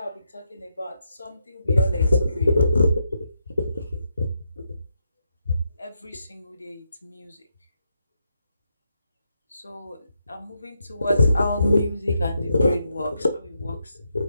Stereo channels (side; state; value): both; inverted; correlation -0.82